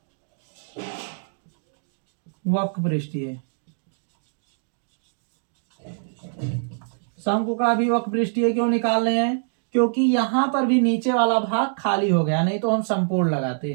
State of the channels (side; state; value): left; silent; digital silence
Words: वक्र पृष्ठीय। शंकु का भी वक्र पृष्ठीय क्यों निकाल रहे हैं? क्योंकि यहां पर भी नीचे वाला भाग खाली हो गया, नहीं तो हम संपूर्ण